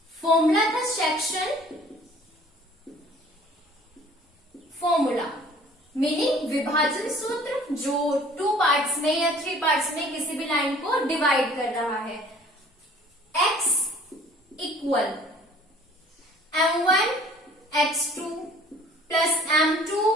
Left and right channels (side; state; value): both; normal; correlation 0.52